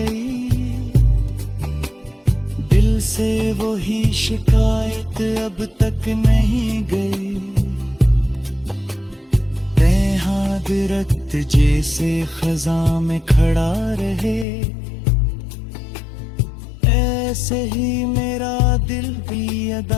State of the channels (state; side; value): drops out; right; at 14.5 s